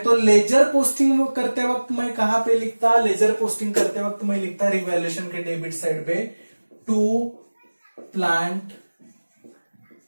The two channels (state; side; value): inverted; both; correlation -1.00